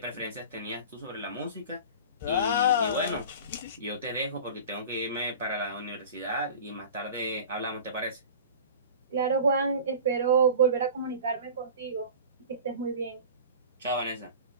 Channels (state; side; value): inverted; both; correlation -0.37